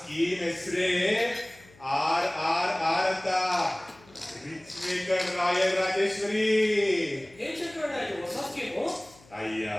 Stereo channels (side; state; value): left; noise; hum, 26 dB below the sound